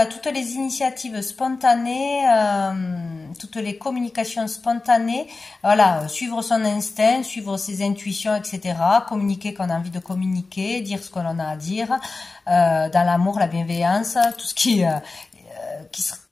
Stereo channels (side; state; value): right; quieter; 3.7 dB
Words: toutes les initiatives spontanées, toutes les communications spontanées, voilà, suivre son instinct, suivre ses intuitions, etc. Communiquer quand on a envie de communiquer, dire ce qu'on a à dire, dans l'amour, la bienveillance, tout ce qui